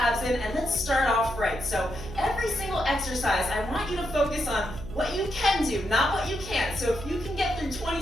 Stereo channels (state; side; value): noise; right; hum, 11 dB below the sound